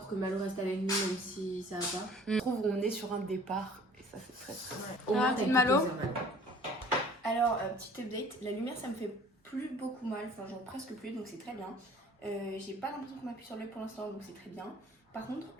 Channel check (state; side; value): normal; both; correlation 0.51